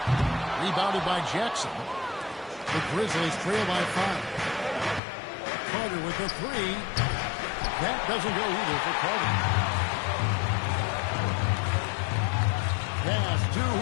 Rebounded by Jackson. The Grizzlies trail by 5. Carter with the 3. That doesn't go either for Carter. Pass to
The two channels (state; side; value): drops out; right; at 5.0 s